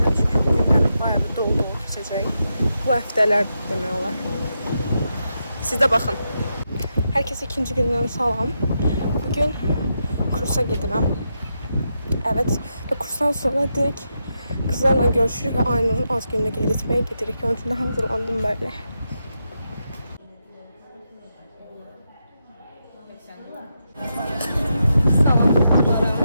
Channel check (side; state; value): both; inverted; correlation -0.85